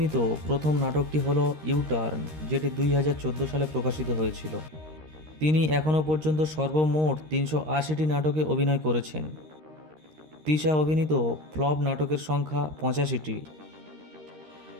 প্রথম নাটকটি হল ইউটার্ন, যেটি 2014 সালে প্রকাশিত হয়েছিল। তিনি এখনও পর্যন্ত সর্বমোট 380টি নাটকে অভিনয় করেছেন। তিশা অভিনীত ফ্লপ নাটকের সংখ্যা 85টি।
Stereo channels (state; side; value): late; left; 13 ms